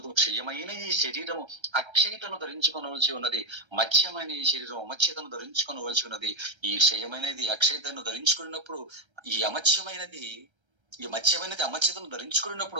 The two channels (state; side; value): late; left; 1.3 ms